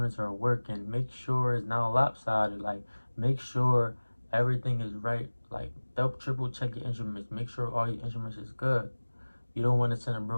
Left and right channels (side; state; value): both; inverted; correlation -1.00